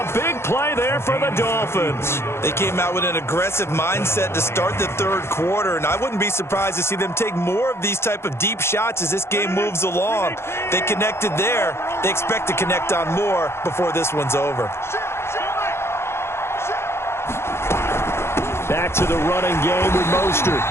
big play there for the Dolphins. They came out with an aggressive mindset to start the third quarter, and I wouldn't be surprised to see them take more of these type of deep shots as this game moves along. They connected there. They expect to connect on more before this one's over. Back to the running game with Mostert.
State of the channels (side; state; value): right; late; 0.12 ms